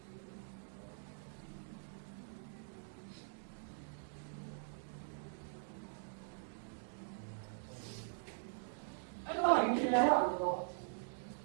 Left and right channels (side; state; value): left; silent; digital silence